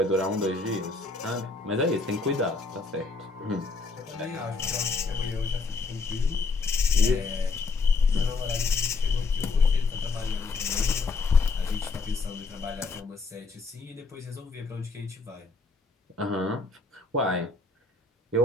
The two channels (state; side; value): quieter; right; 3.9 dB